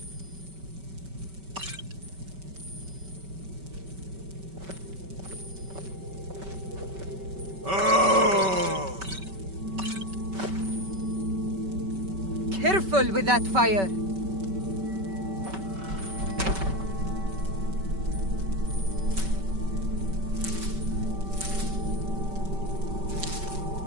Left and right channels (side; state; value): left; late; 5.2 ms